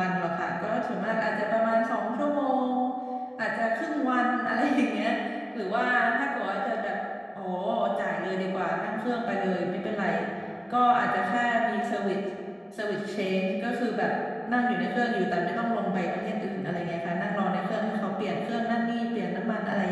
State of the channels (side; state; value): both; identical; correlation 1.00